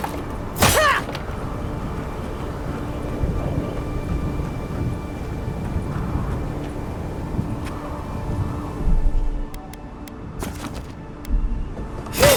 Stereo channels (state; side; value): identical; both; correlation 1.00